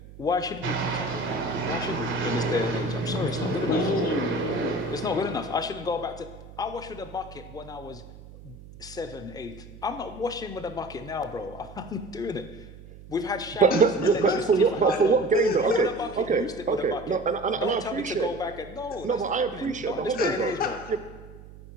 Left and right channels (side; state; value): right; noise; hum, 18 dB below the sound